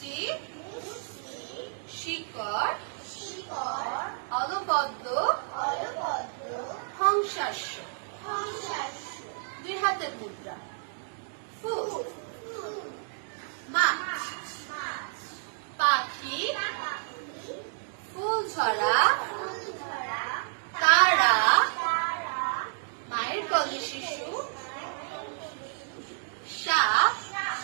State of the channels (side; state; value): left; silent; digital silence